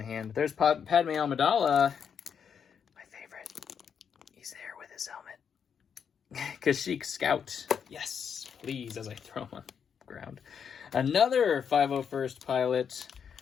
hand. There's Padme Amidala. My favorite. He's there with his helmet. Kashyyyk Scout. Yes, please, as I throw him on the ground. Another 501st Pilot.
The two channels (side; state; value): right; quieter; 7.3 dB